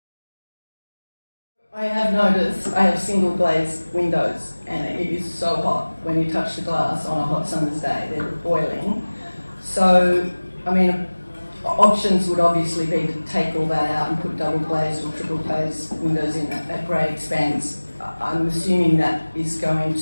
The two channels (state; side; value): inverted; both; correlation -1.00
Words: I have noticed I have single glazed windows, and it is so hot when you touch the glass on a hot summer's day. They're boiling. So, I mean, options would obviously be to take all that out and put double glazed or triple glazed windows in at great expense. I'm assuming that is going